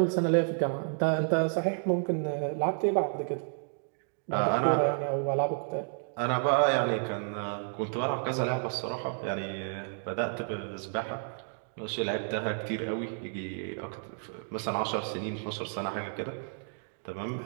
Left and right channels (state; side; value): silent; left; 56 dB below the other